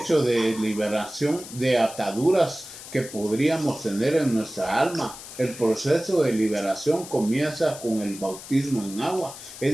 de liberación de ataduras que podríamos tener en nuestra alma. El proceso de liberación comienza con el bautismo en agua.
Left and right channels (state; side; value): noise; left; hiss, 14 dB below the sound